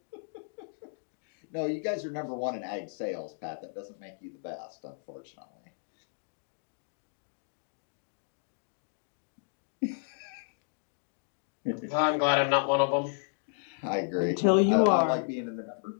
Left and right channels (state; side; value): silent; right; digital silence